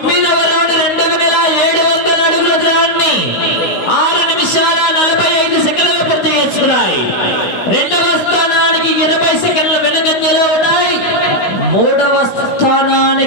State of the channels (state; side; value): late; right; 16 ms